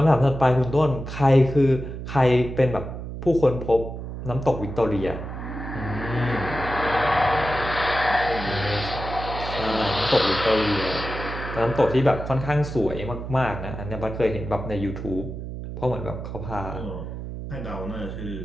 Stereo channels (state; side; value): noise; right; hum, 8 dB below the sound